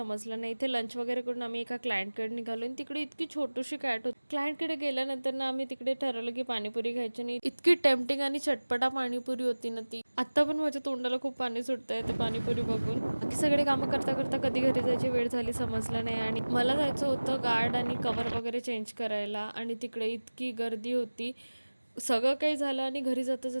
नाही. इथे लंच वगैरे करून आम्ही एका क्लायंटकडे निघालो आणि तिकडे इतकी छोटीशी कॅट होती. क्लायंटकडे गेल्यानंतर ना आम्ही तिकडे ठरवलं की पाणीपुरी खायची. आणि इतकी टेम्पटिंग आणि चटपटा पाणीपुरी होती ना ती. आता पण माझ्या तोंडाला खूप पाणी सुटतंय ते पाणीपुरी बघून. बाकी सगळे कामं करता करता कधी घरी जायची वेळ झाली समजलं नाही. आणि मला जायचं होतं गार्ड आणि कवर वगैरे चेंज करायला, आणि तिकडे इतकी गर्दी होती. सगळं काही झालं आणि घरी जाता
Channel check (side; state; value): both; inverted; correlation -1.00